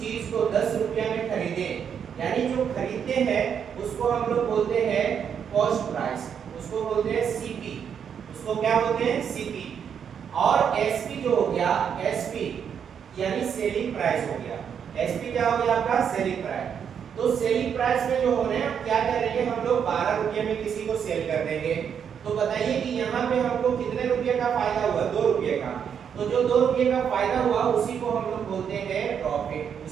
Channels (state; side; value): quieter; left; 7.8 dB